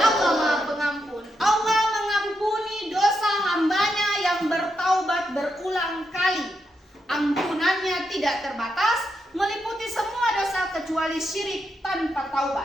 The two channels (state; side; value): normal; both; correlation 0.83